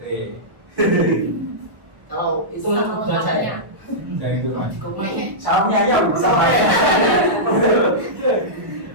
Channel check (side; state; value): left; late; 1.3 ms